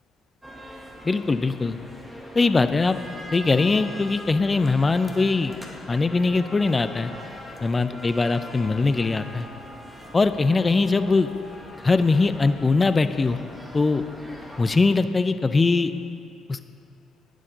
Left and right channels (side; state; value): right; quieter; 3.3 dB